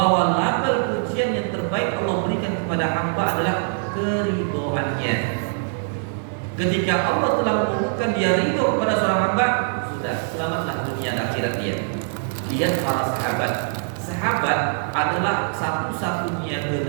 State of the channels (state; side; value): silent; left; digital silence